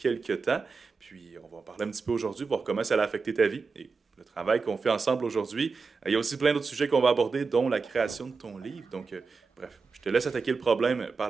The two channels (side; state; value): left; quieter; 4.7 dB